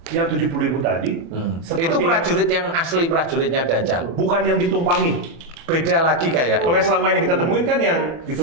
yang 70.000 tadi, Itu prajurit yang asli prajuritnya dajjal. bukan yang ditumpangi. Beda lagi kayak. Kalau yang selama ini kita temuin kan yang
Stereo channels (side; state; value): left; late; 24 ms